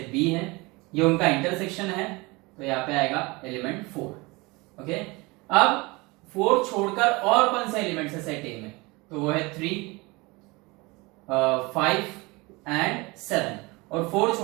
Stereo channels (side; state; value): left; quieter; 24.6 dB